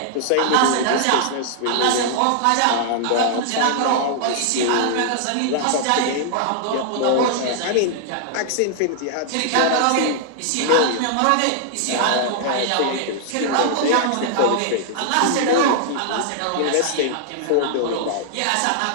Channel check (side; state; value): both; different; correlation -0.01